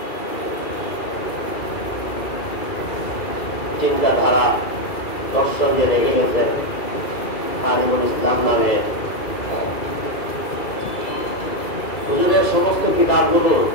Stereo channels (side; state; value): right; late; 2.4 ms